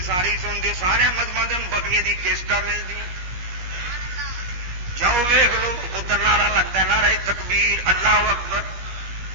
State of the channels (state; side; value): late; left; 17 ms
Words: ساری سن دے سارے مذہباں دے بکریاں دی کیسٹاں ملدی جاؤ ویکھ لو ادھر نعرہ لگتا ہے نعرہ تکبیر اللہ اکبر